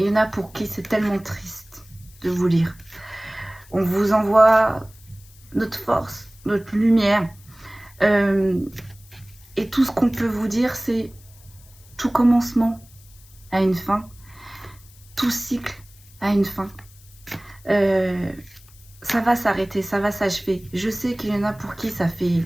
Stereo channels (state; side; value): noise; left; hiss, 25 dB below the sound